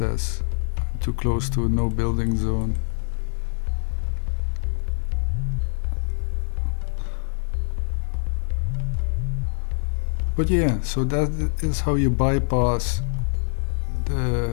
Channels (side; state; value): right; silent; digital silence